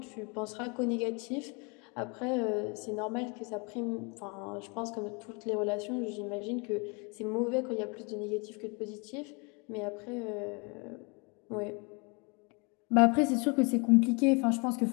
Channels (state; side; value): quieter; right; 31.8 dB